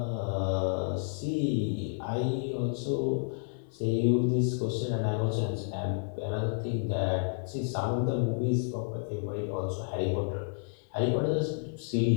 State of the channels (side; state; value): right; silent; 57 dB below the other